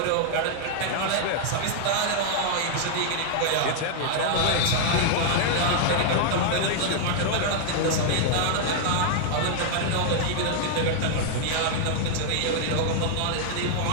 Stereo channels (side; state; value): both; different; correlation 0.00